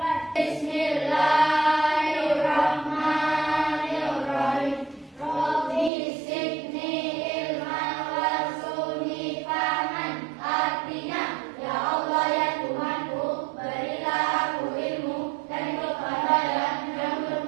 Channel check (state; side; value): drops out; left; at 5.9 s